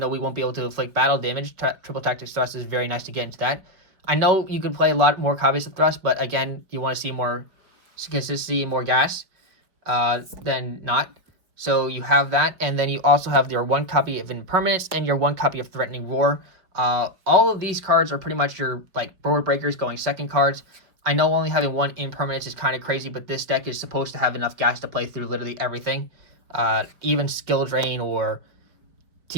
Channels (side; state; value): left; late; 4.9 ms